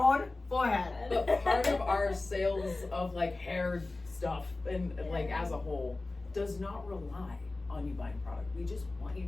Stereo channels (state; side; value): quieter; right; 3.2 dB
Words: own forehead. But part of our sales of like hair stuff and like as a whole does not rely on you buying product. We just want you